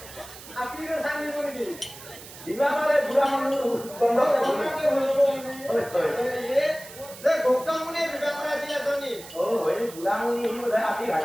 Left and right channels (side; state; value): right; noise; hiss, 16 dB below the sound